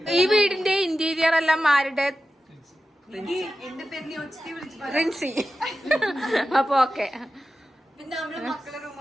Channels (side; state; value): both; normal; correlation 0.93